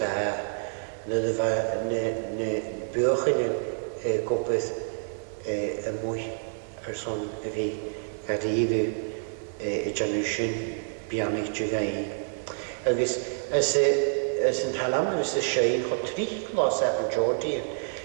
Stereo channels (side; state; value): left; silent; digital silence